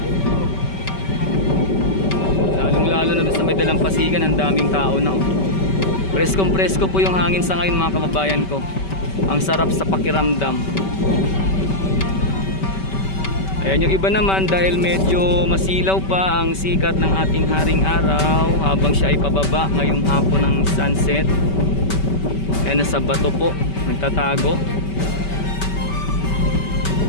Lalong lalo na sa may Dalampasigan, ang daming tao na, oh. Preskong presko po yung hangin sa ngayon, mga kababayan ko. Ang sarap sa pakiramdam. Ayan, yung iba naman, dahil medyo masilaw pa ang sikat ng ating haring araw habang siya ay pababa ngayong hapon ng sunset. Ayan, nasa bato po, nagtatago.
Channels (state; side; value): late; right; 5.2 ms